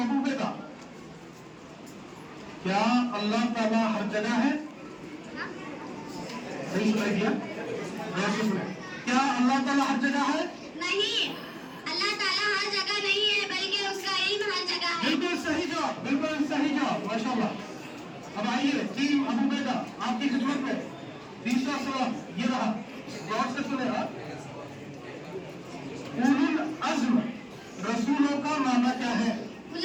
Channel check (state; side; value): identical; both; correlation 1.00